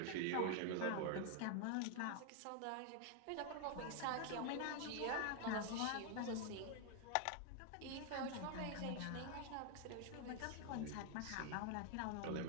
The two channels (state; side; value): different; both; correlation 0.00